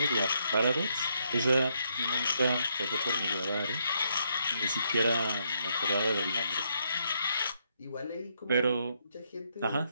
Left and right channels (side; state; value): both; inverted; correlation -0.76